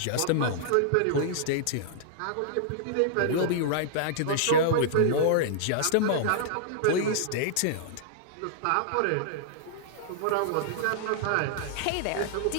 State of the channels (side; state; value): both; different; correlation -0.01